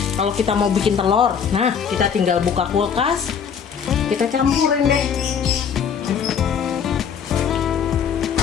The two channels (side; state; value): right; quieter; 7.3 dB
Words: Kalau kita mau bikin telur, nah kita tinggal buka kulkas, kita campurin deh.